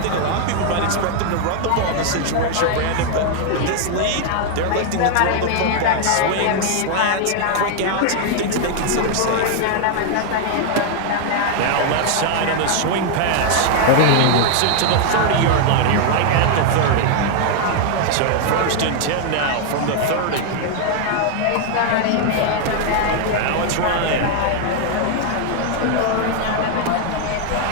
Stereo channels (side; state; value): both; different; correlation 0.00